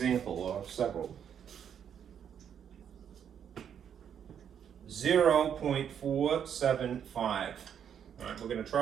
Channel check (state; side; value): quieter; left; 8.5 dB